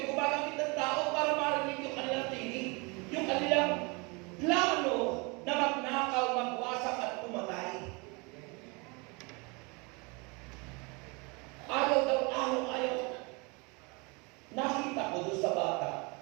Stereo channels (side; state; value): left; quieter; 29.1 dB